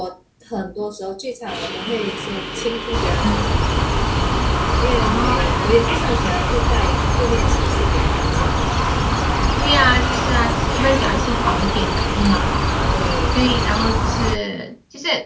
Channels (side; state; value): both; identical; correlation 1.00